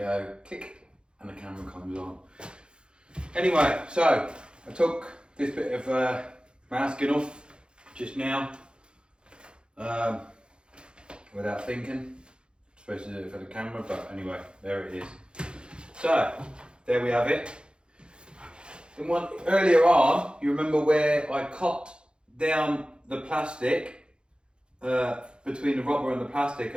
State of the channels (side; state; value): left; late; 0.052 ms